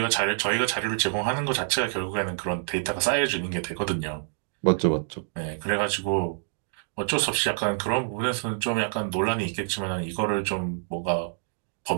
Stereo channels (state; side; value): silent; left; digital silence